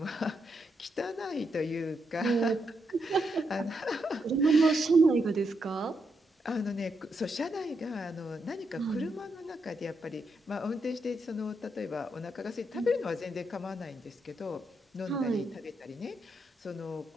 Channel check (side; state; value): both; normal; correlation 0.81